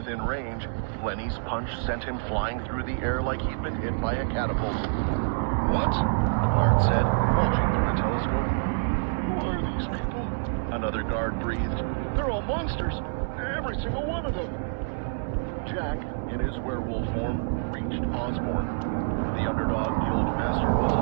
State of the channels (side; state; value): left; silent; digital silence